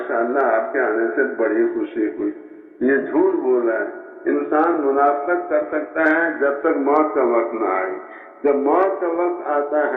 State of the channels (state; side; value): identical; both; correlation 1.00